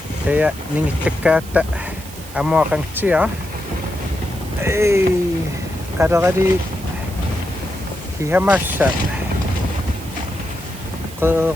Kaya ningittekkaata amuaqangtia. Ei. Kadagadi hihamassa.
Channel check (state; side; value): noise; right; hiss, 17 dB below the sound